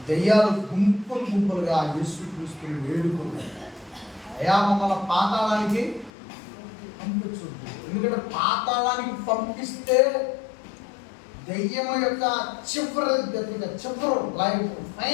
దెయ్యాలు గుంపులు గుంపులుగా యేసుక్రీస్తుని వేడుకుంటాయి. అయా మమ్మల్ని పాతాళానికి పంపించొద్దు. ఎందుకంటే పాతాళానికి పంపిస్తే దెయ్యం యొక్క చివరి లైఫ్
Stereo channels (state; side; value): drops out; right; at 6.1 s